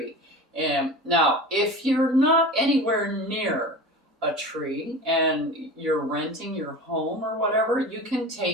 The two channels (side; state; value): both; normal; correlation 0.33